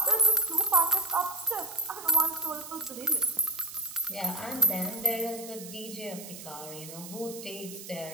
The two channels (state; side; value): noise; right; hiss, 13 dB below the sound